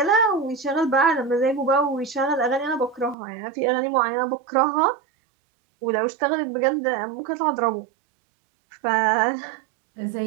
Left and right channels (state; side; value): drops out; left; at 3.2 s